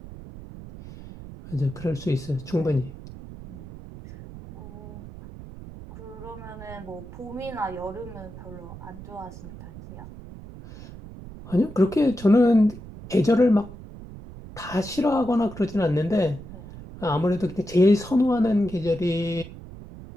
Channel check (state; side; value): noise; right; rumble, 14 dB below the sound